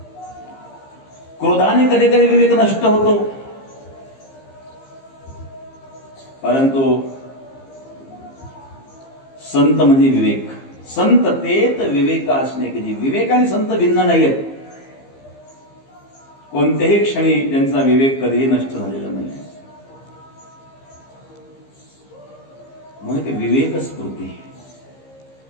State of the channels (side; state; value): right; late; 15 ms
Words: क्रोधाने कधी कधी विवेक नष्ट होतो. परंतु संत म्हणजे विवेक. संत तेत विवेक असणे की विवेक आणि संत भिन्न नाही आहेत. कोणत्याही क्षणी त्यांचा विवेक कधीही नष्ट झालेला नाही. म्हणून विवेक स्फूर्ती.